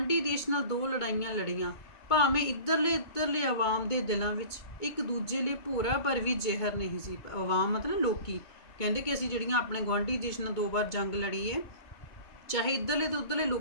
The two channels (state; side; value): late; right; 2.2 ms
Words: ਦੇਸ਼ ਨਾਲ 2 ਲੜਾਈਆਂ ਲੜੀਆਂ, ਭਾਵੇਂ ਇੱਧਰਲੇ ਆਵਾਮ ਦੇ ਦਿਲਾਂ ਵਿੱਚ ਇੱਕ ਦੂਜੇ ਲਈ ਭੋਰਾ ਪਰ ਵੀ ਜ਼ਹਿਰ ਨਹੀਂ ਸੀ। ਆਵਾਮ ਮਤਲਬ ਲੋਕੀ, ਕਹਿੰਦੇ ਕਿ ਅਸੀਂ ਜਿਹੜੀਆਂ ਆਪਣੇ ਗੁਆਂਢੀ ਦੇਸ਼ ਨਾਲ 2 ਵਾਰ ਜੰਗ ਲੜੀ ਹੈ, ਚਾਹੇ ਇੱਧਰਲੇ ਤੇ ਉੱਧਰਲੇ